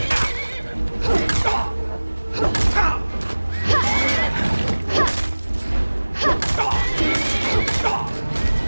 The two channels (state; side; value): inverted; both; correlation -1.00